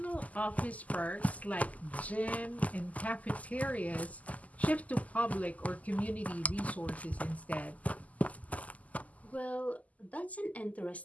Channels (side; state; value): right; late; 0.074 ms